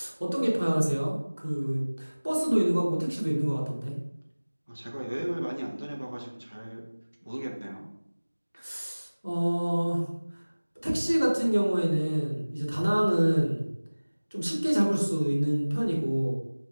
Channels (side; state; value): both; inverted; correlation -1.00